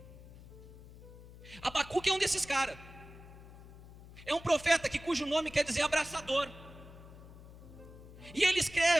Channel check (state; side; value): noise; left; hum, 18 dB below the sound